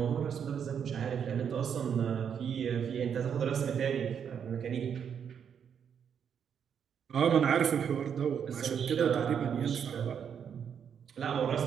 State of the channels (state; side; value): quieter; left; 7.8 dB